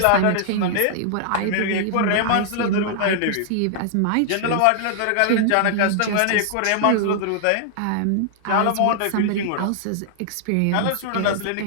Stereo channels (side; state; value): both; different; correlation -0.01